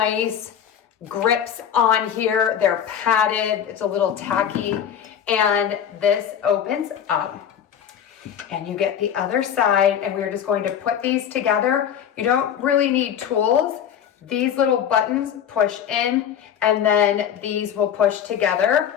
grips on here. They're padded. It's a little tacky. And this opens up. And you get the other side, and we're just going to put these together. You don't really need tools. These little buttons push in, and then these will push together.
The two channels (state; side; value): quieter; right; 9.0 dB